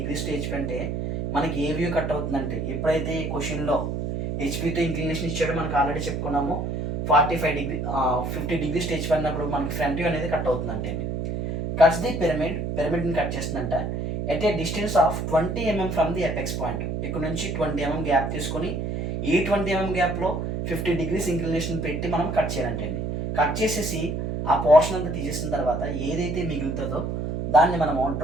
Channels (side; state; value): right; noise; hum, 3 dB below the sound